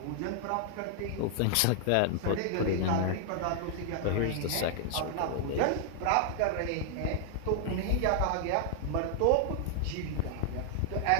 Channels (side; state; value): both; different; correlation 0.00